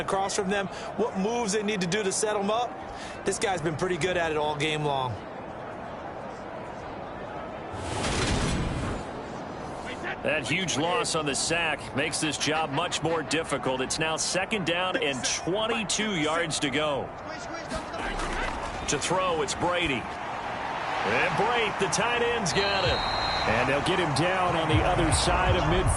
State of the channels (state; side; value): identical; both; correlation 1.00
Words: from them, what moves they need to do to set them up. This guy's been pretty good at it all game long. That huge loss on the sack makes this job much more difficult. It's now 2nd down and 22 yards to go. To throw, it's Brady. And Brate, the tight end's got it. And they'll get him down on the other side of